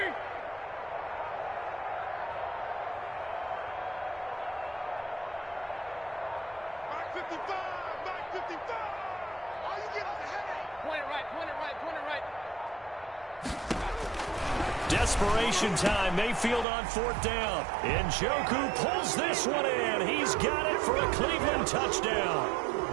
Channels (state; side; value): drops out; left; at 16.7 s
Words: Mark 55. Oh, you get us a headache. Point it right. Desperation time. Mayfield on 4th down. Njoku pulls this one in. He's got it for a Cleveland touchdown.